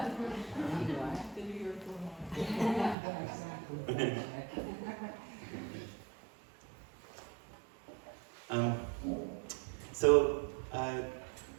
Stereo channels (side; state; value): left; drops out; at 3.0 s